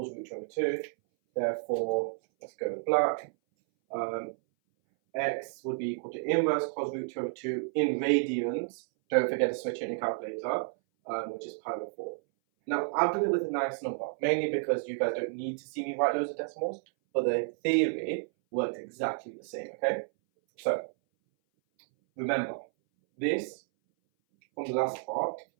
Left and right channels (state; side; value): silent; left; 57 dB below the other